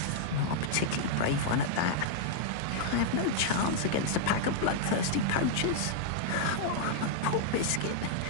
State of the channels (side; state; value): both; different; correlation -0.01